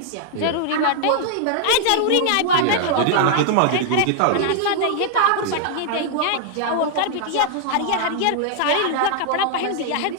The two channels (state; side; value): different; both; correlation -0.01